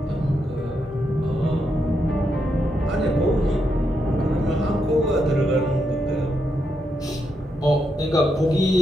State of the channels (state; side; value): normal; both; correlation 0.82